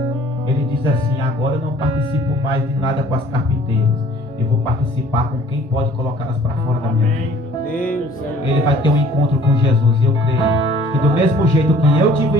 ele diz assim: agora eu não participo mais de nada com as carpinteiras. Eu vou participar com quem pode colocá-las para fora da minha vida. Ele vai ter um encontro com Jesus. E eu creio que do mesmo jeito que eu tive um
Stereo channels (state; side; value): normal; both; correlation 0.54